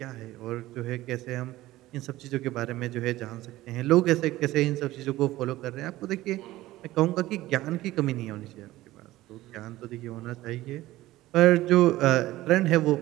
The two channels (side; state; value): left; quieter; 16.6 dB